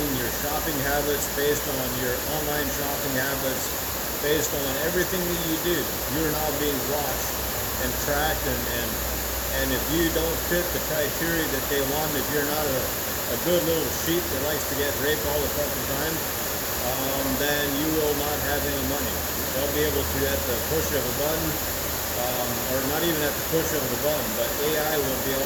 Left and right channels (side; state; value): both; identical; correlation 1.00